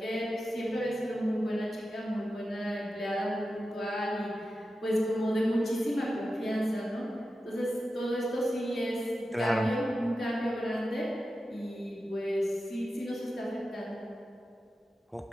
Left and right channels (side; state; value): both; normal; correlation 0.92